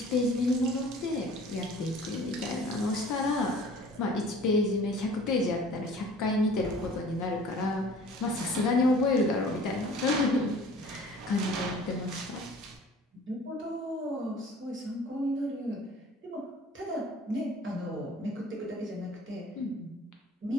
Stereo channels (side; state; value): both; normal; correlation 0.48